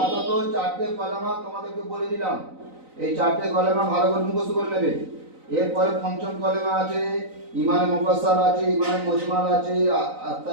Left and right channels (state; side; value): late; left; 3.9 ms